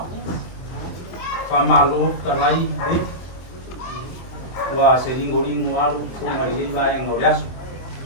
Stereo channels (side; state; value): right; late; 23 ms